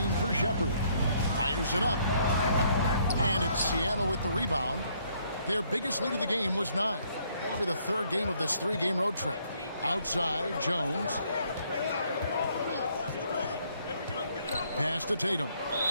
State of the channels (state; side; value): inverted; both; correlation -0.67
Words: for Shepard. Fires it up. And it's Seattle with the rebound. Their biggest lead of the game was 9. That'll be the 3rd game of this 3-game road trip. Outside, Jones. Pass to Tatum.